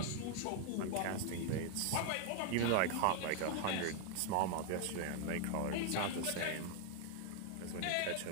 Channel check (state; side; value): different; both; correlation 0.00